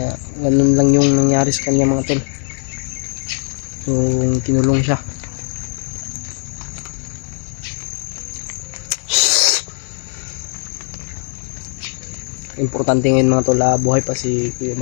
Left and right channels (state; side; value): silent; right; 67 dB below the other